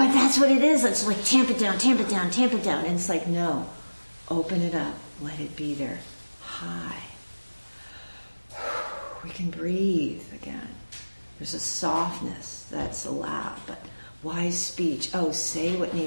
that's what it is. It's like tamp it down, tamp it down, tamp it down. And it's like, no, open it up, let it be there. High. We can breathe again. There's a softness that's allowed, but wise speech. Oh, say what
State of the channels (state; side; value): inverted; both; correlation -1.00